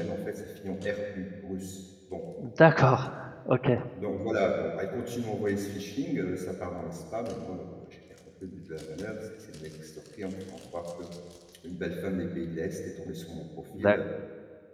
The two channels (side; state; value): both; identical; correlation 1.00